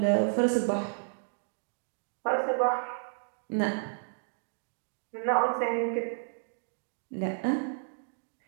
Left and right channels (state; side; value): silent; left; digital silence